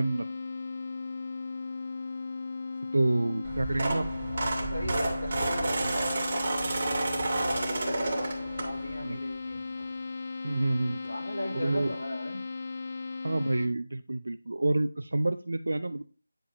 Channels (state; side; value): inverted; both; correlation -0.94